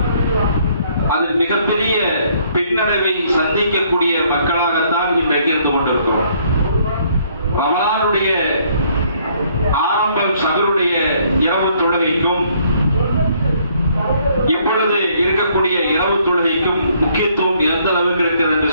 அதில் மிகப்பெரிய பின்னடைவை சந்திக்கக்கூடிய மக்களாகத்தான் இன்றைக்கு இருந்து கொண்டிருக்கிறோம். ரமலானுடைய ஆரம்பம் சஹருடைய இரவு தொழுகைக்கும் இப்பொழுது இருக்கக்கூடிய இரவு தொழுகைக்கும் முக்கியத்துவம் எந்த அளவுக்கு இருக்கிறது என்று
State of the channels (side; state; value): both; inverted; correlation -0.65